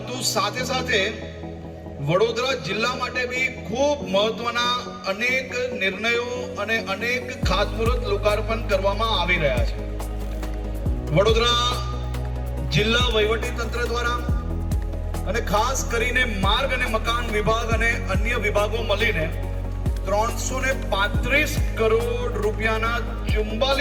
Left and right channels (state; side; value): identical; both; correlation 1.00